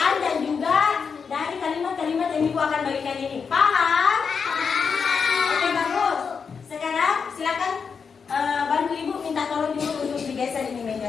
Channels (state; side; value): quieter; right; 5.9 dB